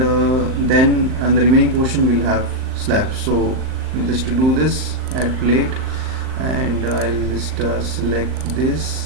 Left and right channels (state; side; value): late; left; 39 ms